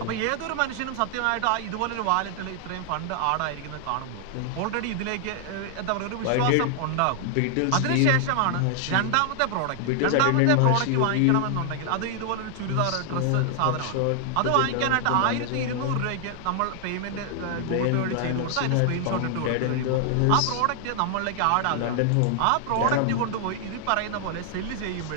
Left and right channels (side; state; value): both; different; correlation 0.00